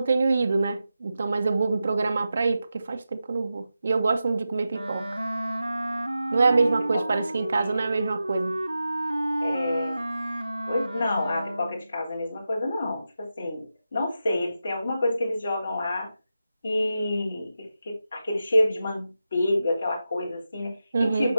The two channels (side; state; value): both; inverted; correlation -0.91